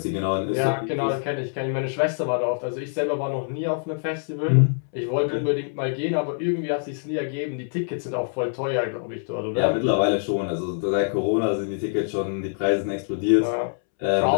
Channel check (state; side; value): silent; right; 62 dB below the other